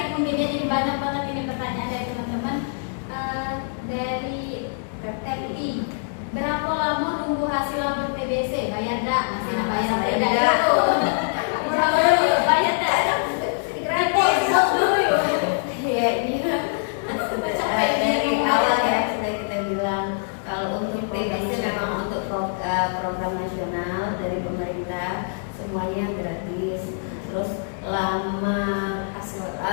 mungkin ya, jadi banyak banget ini pertanyaan dari teman-teman. Dari Teti, berapa lama nunggu hasil labor TBC? Bayar dak? Masih nak bayar Bayar dak? dak. Bayar dak? Gratis. Ya ini dari awal ya sudah kita bilang kalau untuk TBC memang untuk program nasional dari pemerintah semuanya gratis. Terus lama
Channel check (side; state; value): right; silent; digital silence